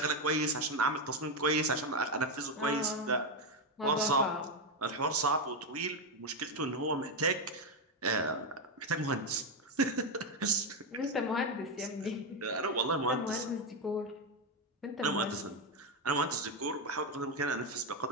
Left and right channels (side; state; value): both; normal; correlation 0.07